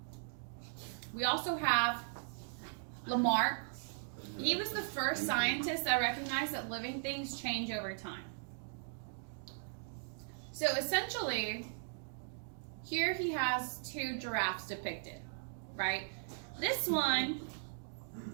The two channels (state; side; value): silent; left; digital silence